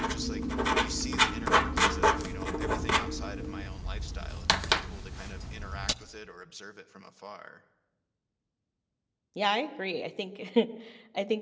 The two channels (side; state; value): both; identical; correlation 1.00